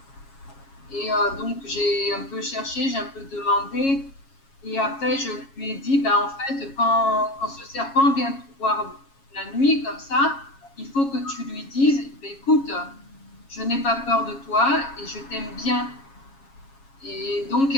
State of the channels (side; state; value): right; late; 7.3 ms